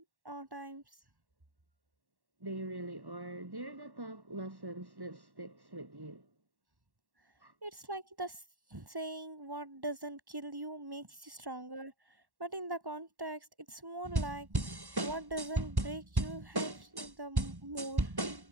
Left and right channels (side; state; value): left; late; 1.1 ms